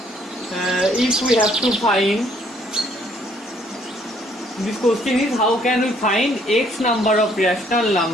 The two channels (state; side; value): normal; both; correlation 0.64